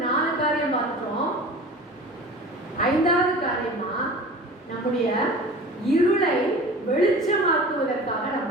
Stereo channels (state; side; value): normal; both; correlation 0.38